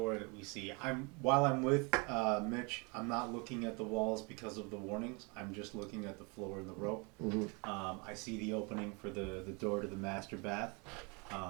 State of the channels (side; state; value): left; quieter; 30.8 dB